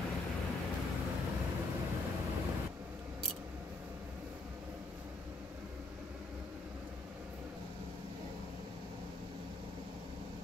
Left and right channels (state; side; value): quieter; right; 3.3 dB